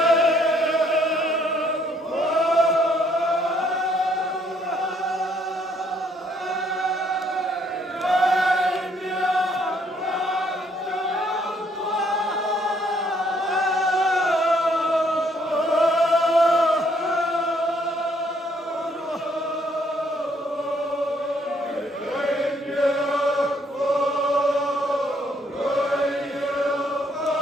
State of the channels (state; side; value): normal; both; correlation 0.68